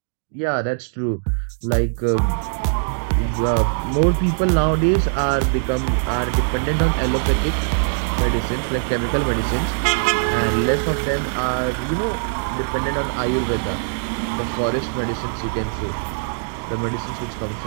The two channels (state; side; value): silent; left; digital silence